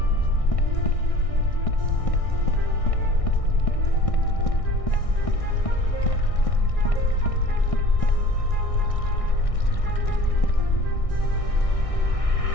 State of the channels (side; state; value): right; late; 1.6 ms